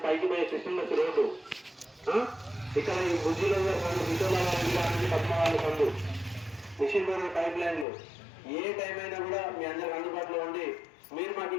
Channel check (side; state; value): right; drops out; at 7.9 s